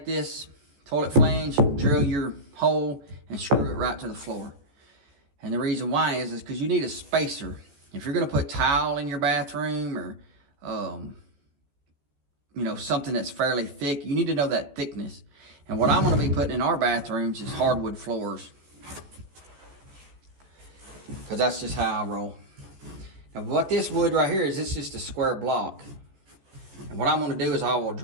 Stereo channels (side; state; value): left; late; 14 ms